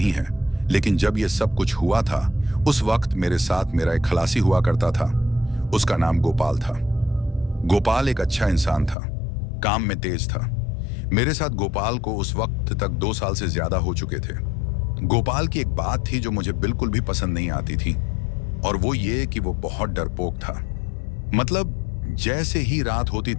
है, लेकिन जब यह सब कुछ हुआ था उस वक्त मेरे साथ मेरा एक खलासी हुआ करता था। उसका नाम गोपाल था। गोपाल एक अच्छा इंसान था, काम में तेज था। मेरे साथ गोपाल को उस वक्त तक 2 साल से ज्यादा हो चुके थे। गोपाल की एक बात थी जो मुझे बिल्कुल भी पसंद नहीं आती थी, और वो ये कि वो बहुत डरपोक था। मतलब जैसे ही रात होती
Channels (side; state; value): right; drops out; at 9.0 s